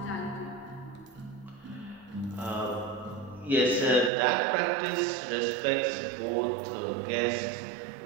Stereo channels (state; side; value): drops out; left; at 4.1 s